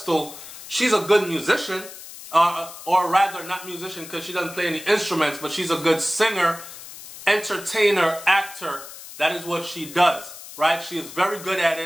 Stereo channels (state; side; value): noise; left; hiss, 14 dB below the sound